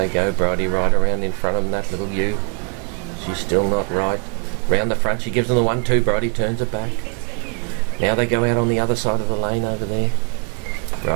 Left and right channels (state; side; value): quieter; left; 36.5 dB